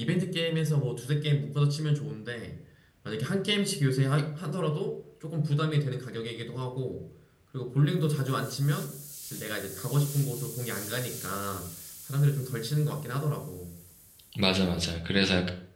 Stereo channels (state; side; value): identical; both; correlation 1.00